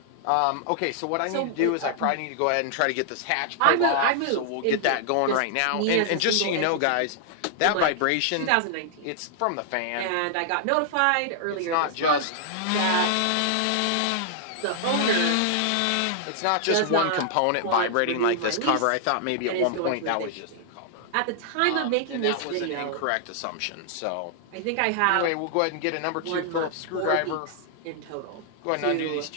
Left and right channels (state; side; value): different; both; correlation -0.01